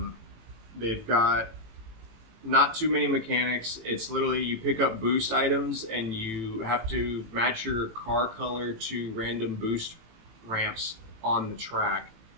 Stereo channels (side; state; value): left; late; 18 ms